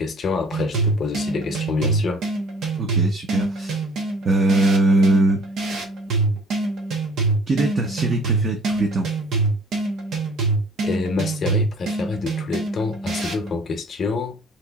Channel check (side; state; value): both; normal; correlation 0.52